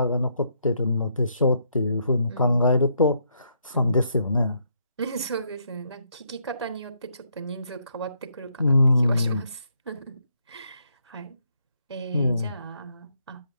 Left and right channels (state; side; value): inverted; both; correlation -0.74